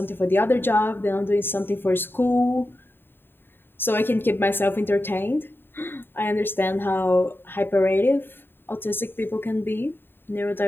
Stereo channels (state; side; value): late; right; 0.10 ms